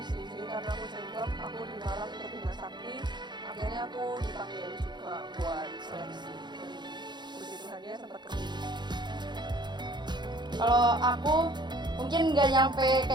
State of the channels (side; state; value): left; late; 0.21 ms